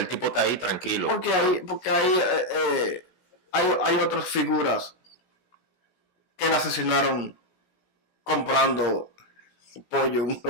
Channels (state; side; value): late; right; 16 ms